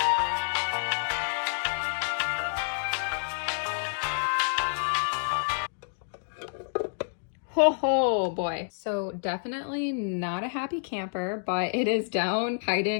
Oh boy. So definitely not a happy camper, but it is down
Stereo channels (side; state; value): right; silent; digital silence